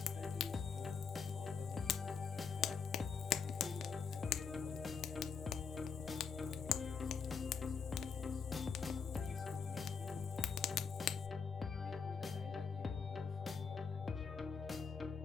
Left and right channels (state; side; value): quieter; right; 5.8 dB